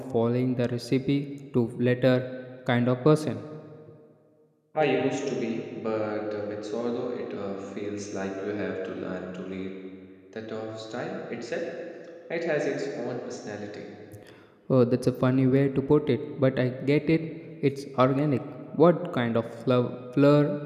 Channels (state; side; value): identical; both; correlation 1.00